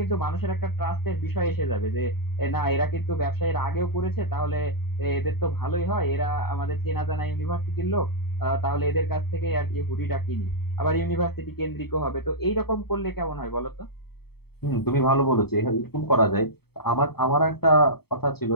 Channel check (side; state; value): right; late; 0.96 ms